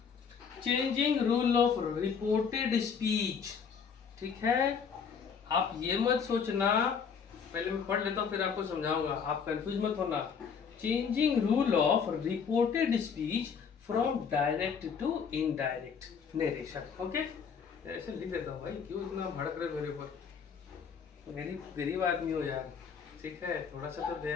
Changing rule of reported speech. ठीक है, आप ये मत सोचना, पहले मैं पढ़ लेता हूँ फिर आपको समझाऊंगा, आप कंफ्यूज मत होना। Changing rule of reported speech from direct to indirect narration. Okay, ऐसे लिख देता हूँ भाई, क्यों इतना भड़क रहे मेरे ऊपर, मेरी गरीब आदमी हो यार। ठीक है, थोड़ा सा तो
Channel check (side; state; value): right; quieter; 6.5 dB